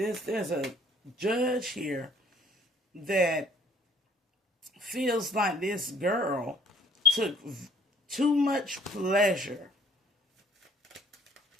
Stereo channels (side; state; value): both; normal; correlation 0.59